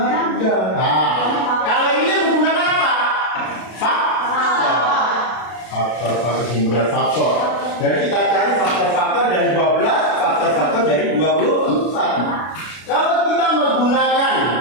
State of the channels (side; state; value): right; late; 32 ms